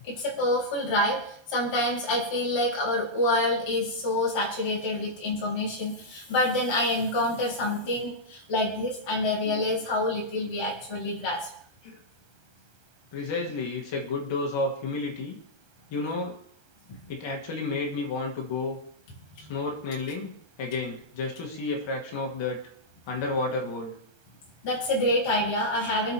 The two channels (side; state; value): right; late; 1.3 ms